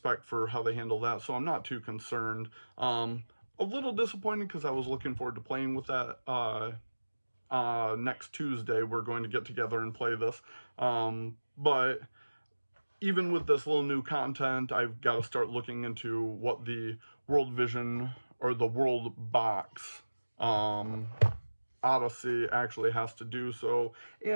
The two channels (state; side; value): inverted; both; correlation -1.00